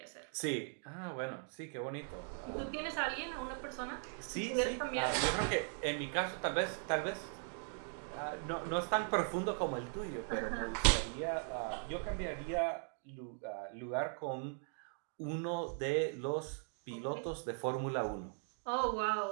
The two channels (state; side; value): silent; left; 52 dB below the other